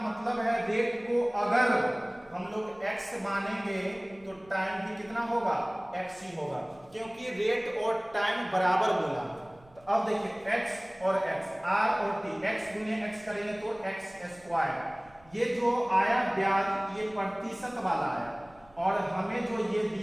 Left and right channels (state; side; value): noise; right; rumble, 28 dB below the sound